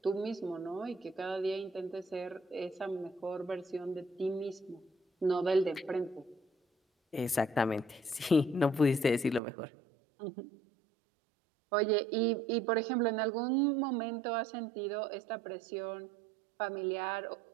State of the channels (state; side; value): drops out; left; at 9.4 s